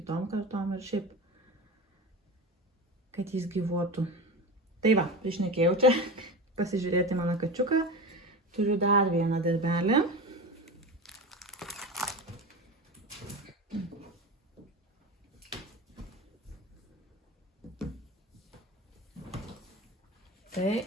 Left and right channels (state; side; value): normal; both; correlation 0.27